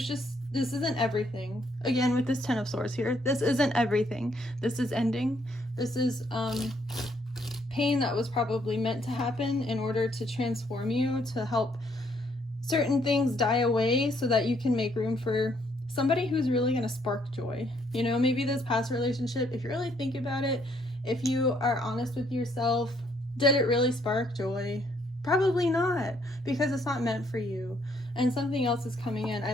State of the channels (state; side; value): normal; both; correlation 0.69